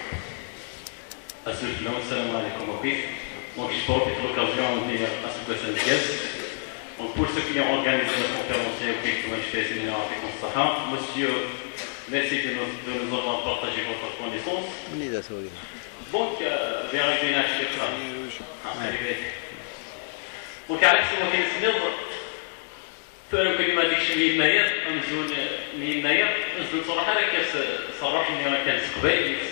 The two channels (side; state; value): right; silent; 58 dB below the other